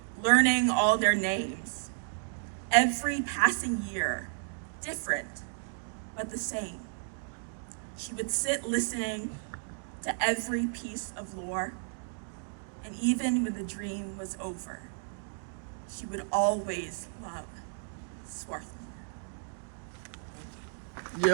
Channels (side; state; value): left; silent; digital silence